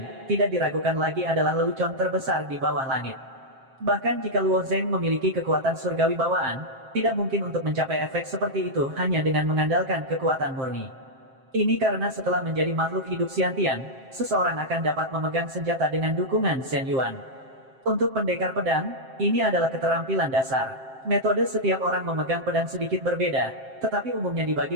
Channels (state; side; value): late; left; 7.6 ms